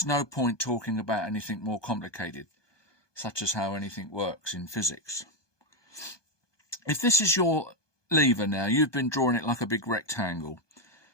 no point talking about anything more complicated, such as how anything works in physics. If this is your lever now, you've been drawing it like a big rectangle,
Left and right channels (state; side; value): late; right; 1.2 ms